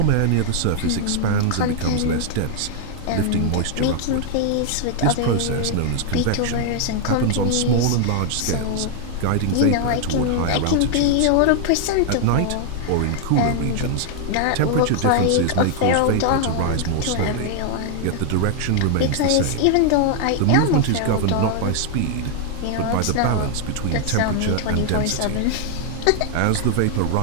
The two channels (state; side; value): different; both; correlation 0.00